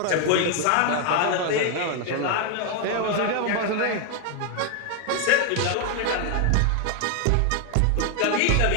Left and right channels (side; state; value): both; different; correlation 0.00